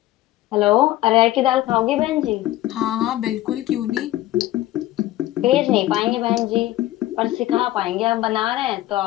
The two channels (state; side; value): quieter; right; 15.5 dB